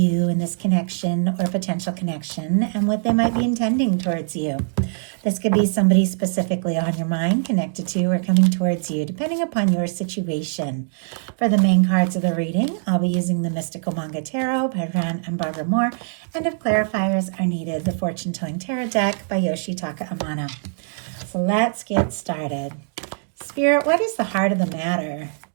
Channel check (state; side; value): silent; left; 64 dB below the other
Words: in this connection or potential connection, and what they might be intending towards you. This could be somebody specifically on your mind, connected to, or coming towards you, depending upon your situation. For the main cards of the reading, I'll be using the Mystical Manga Tarot by Rann and Barbara Moore, and if clarifiers are needed, the Fortune Telling Tarot deck by Yoshitaka Amano. So let's get started. Spirit, what is the heart of the matter?